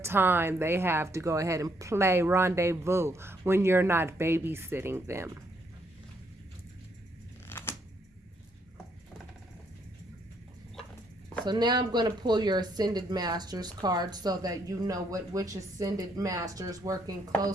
they have to go ahead and play rendezvous when you're not babysitting them. So now I'm going to pull your Ascended Masters card so that you know which Ascended Master is working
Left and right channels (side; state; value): both; normal; correlation 0.72